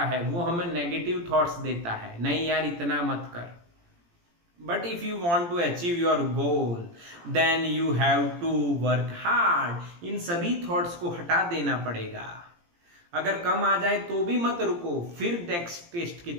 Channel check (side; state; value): left; late; 17 ms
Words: है, वो हमें नेगेटिव थॉट्स देता है, नहीं यार इतना मत कर। But if you want to achieve your goal, then you have to work hard. इन सभी थॉट्स को हटा देना पड़ेगा। अगर कम आ जाए तो भी मत रुको, फिर नेक्स्ट टेस्ट की